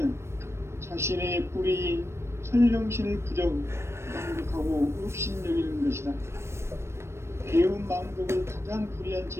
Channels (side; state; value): left; late; 0.13 ms